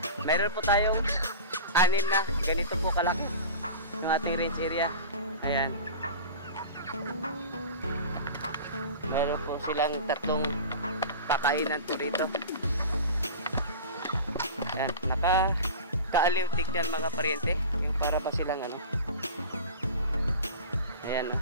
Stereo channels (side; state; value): both; inverted; correlation -0.35